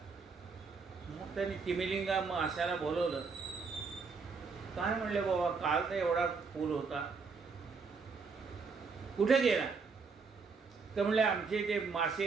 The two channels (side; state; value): left; quieter; 4.9 dB